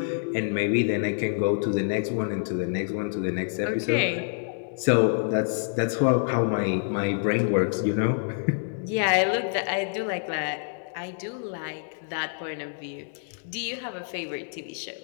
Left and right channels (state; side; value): silent; right; 60 dB below the other